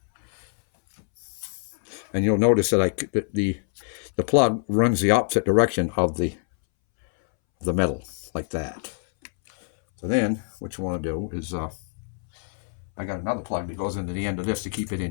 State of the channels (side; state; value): right; silent; 62 dB below the other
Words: And you'll notice that the plug runs the opposite direction of the metal, like that. So then what you want to do is, I got another plug that goes into the end of this to keep it